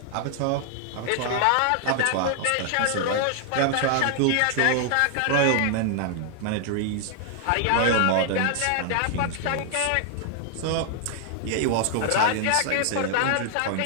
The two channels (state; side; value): different; both; correlation 0.00